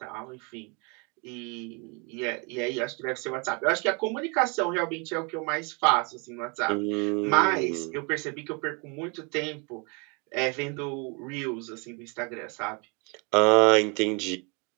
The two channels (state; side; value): quieter; left; 33.0 dB